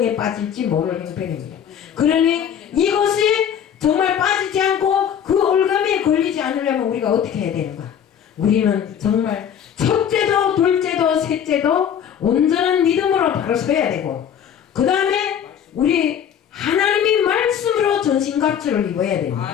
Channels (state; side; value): quieter; right; 8.8 dB